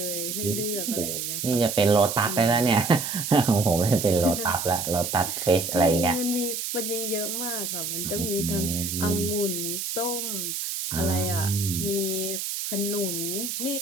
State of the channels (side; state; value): right; noise; hiss, 4 dB below the sound